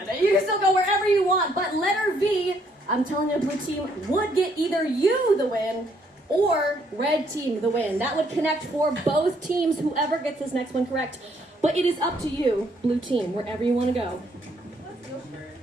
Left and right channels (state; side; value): normal; both; correlation 0.69